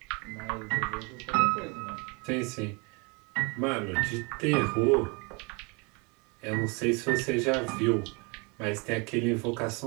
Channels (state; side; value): quieter; left; 30.6 dB